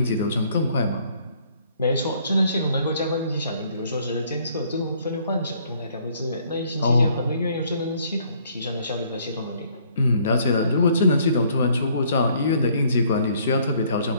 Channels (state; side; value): inverted; both; correlation -0.63